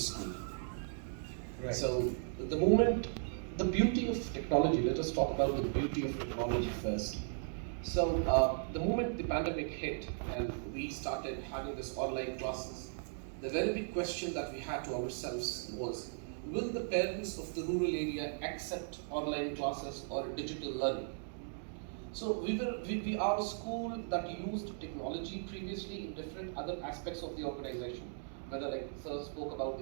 Right. So, the beauty of technology, let us talk about the beauty of technology first. So, the moment the pandemic hit and we started having this online classes, the very big question that we had to ourselves was, will the parents of the rural area accept online classes or digital learning? So we are a school that used technology previously in different other aspects of the organization. Whether, like Sir spoke about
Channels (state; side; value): silent; left; digital silence